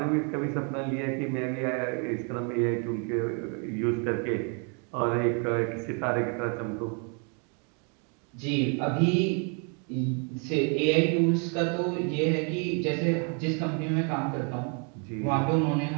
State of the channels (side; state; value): left; quieter; 38.0 dB